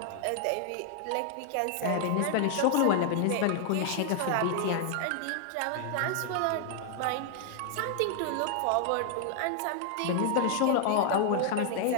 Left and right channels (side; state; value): both; different; correlation 0.00